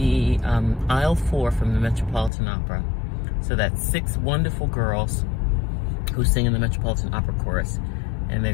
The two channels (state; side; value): drops out; right; at 2.3 s